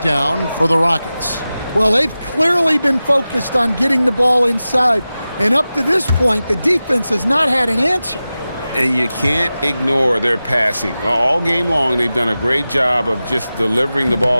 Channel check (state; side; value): inverted; both; correlation -0.95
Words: for the Rockets. Well, they've clearly been focused on getting the ball inside, and up to this point, the defense has not had an answer. And you can't ignore their passing. All game long, they've done a great job of just delivering the